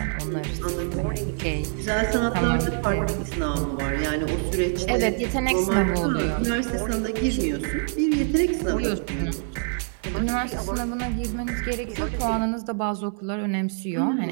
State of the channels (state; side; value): silent; left; 62 dB below the other